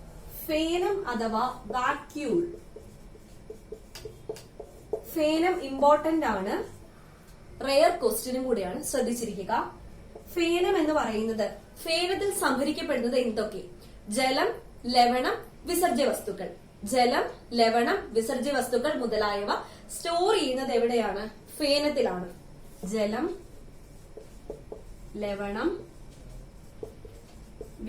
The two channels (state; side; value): identical; both; correlation 1.00